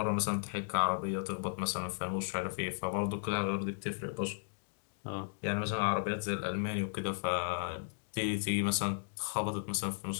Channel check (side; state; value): right; silent; digital silence